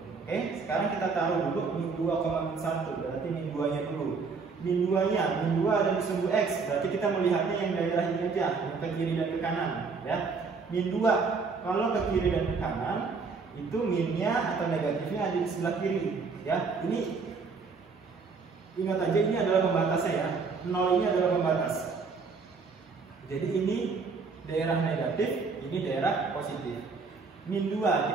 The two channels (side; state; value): left; quieter; 4.8 dB